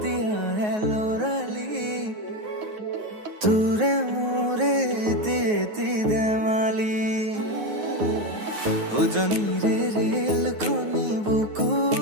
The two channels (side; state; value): left; late; 9.4 ms